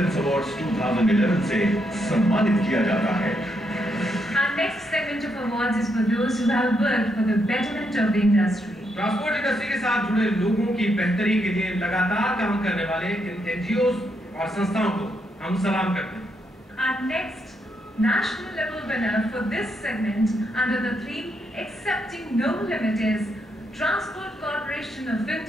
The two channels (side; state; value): both; normal; correlation 0.78